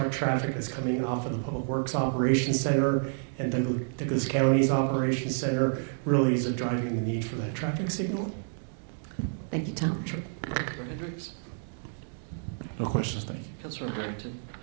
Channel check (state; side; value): silent; left; digital silence